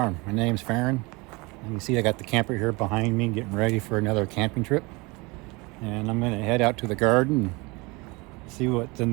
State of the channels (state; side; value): quieter; left; 25.7 dB